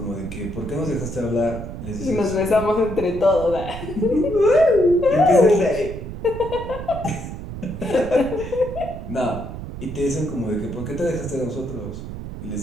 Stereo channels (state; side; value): noise; right; rumble, 9 dB below the sound